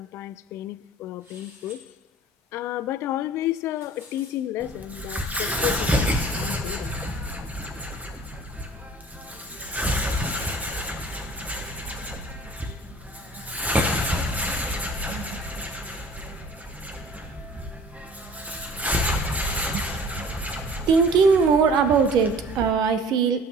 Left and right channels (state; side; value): normal; both; correlation 0.47